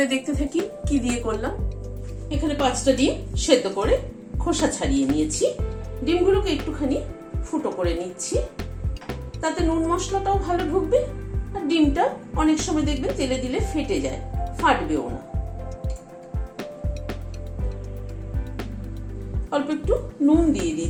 দেখতে থাকি কি দিয়ে করলাম। এখানে 5টা ডিম সেদ্ধ করে খোসা ছাড়িয়ে নিয়েছি। ডিমগুলোকে একটুখানি ফুটো করে নিচ্ছি, তাতে নুন মশলাটাও ভালো ঢুকবে। আর ডিমটা অনেক সময় দেখবেন তেলে দিলে ফেটে যায়, ফাটবেও না। অল্প একটু নুন দিয়ে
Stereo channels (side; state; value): both; identical; correlation 1.00